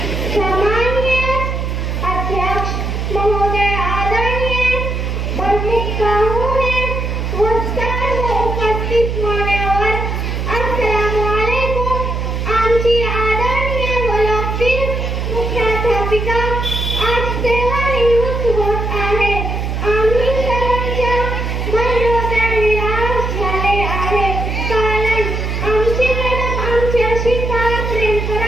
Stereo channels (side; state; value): right; noise; hum, 2 dB below the sound